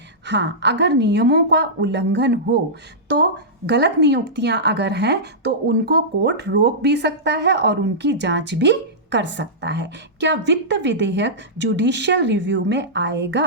हाँ, अगर नियमों का उल्लंघन हो तो गलत नियुक्तियां अगर हैं तो उनको कोर्ट रोक भी सकता है और उनकी जांच भी कर सकता है। क्या वित्त विधेयक जुडिशियल रिव्यू में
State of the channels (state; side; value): normal; both; correlation -0.15